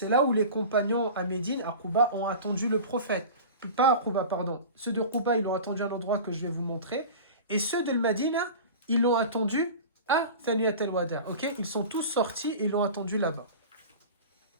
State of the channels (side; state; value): both; inverted; correlation -0.34